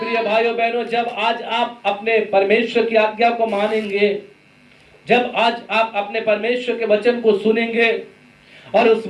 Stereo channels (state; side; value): identical; both; correlation 1.00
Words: भाइयों बहनों, जब आज आप अपने परमेश्वर की आज्ञा को मानेंगे, जब आज आप अपने परमेश्वर के वचन को सुनेंगे और उस